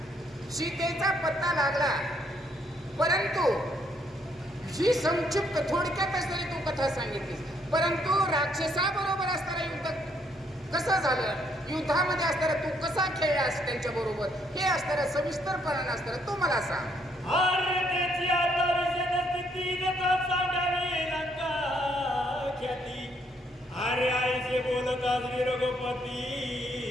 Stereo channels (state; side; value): normal; both; correlation 0.70